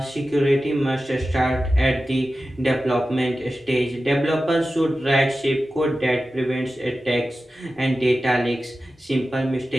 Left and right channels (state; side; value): normal; both; correlation 0.94